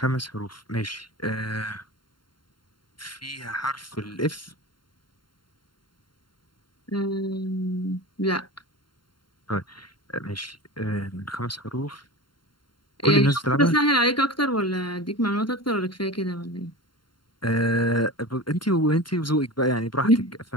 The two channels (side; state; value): right; late; 0.72 ms